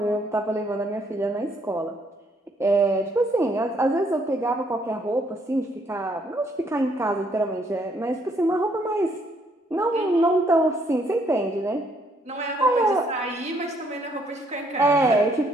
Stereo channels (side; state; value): both; normal; correlation 0.69